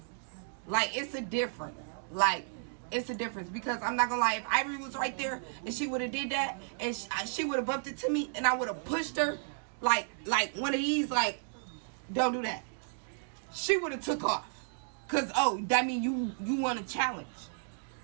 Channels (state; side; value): silent; left; digital silence